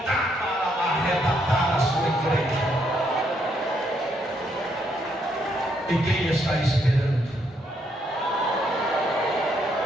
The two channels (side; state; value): both; normal; correlation 0.74